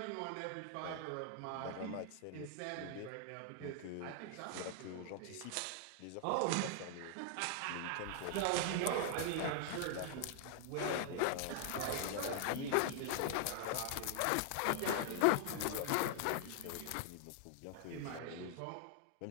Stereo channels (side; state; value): both; different; correlation 0.00